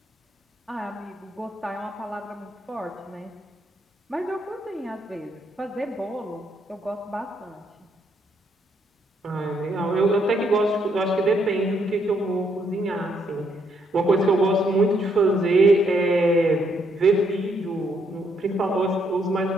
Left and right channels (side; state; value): both; normal; correlation 0.73